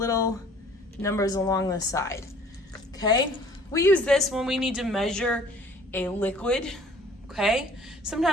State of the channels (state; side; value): normal; both; correlation 0.53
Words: numbers along the side. Okay, we use this when we need to measure a liquid. Okay,